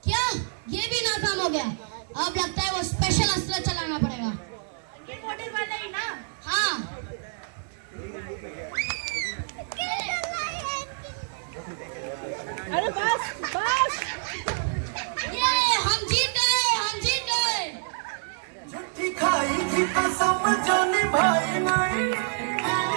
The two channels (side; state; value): left; silent; digital silence